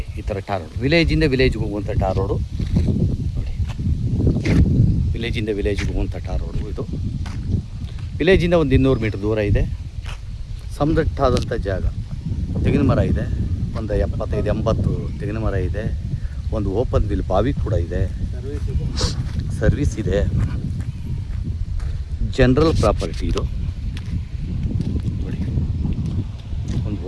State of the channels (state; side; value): identical; both; correlation 1.00